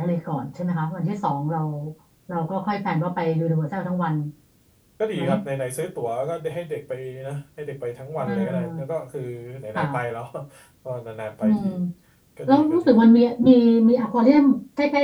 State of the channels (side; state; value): both; identical; correlation 1.00